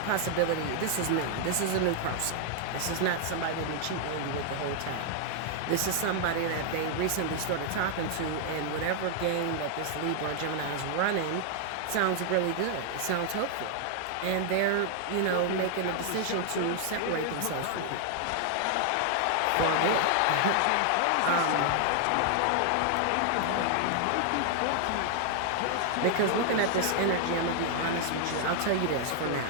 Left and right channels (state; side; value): different; both; correlation 0.00